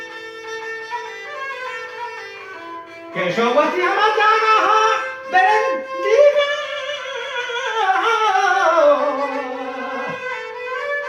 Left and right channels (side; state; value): both; identical; correlation 1.00